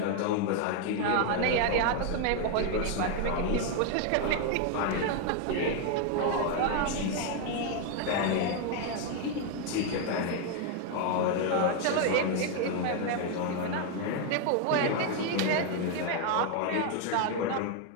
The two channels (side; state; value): both; different; correlation 0.01